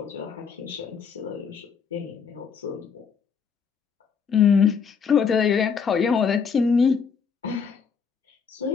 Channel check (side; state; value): right; quieter; 6.2 dB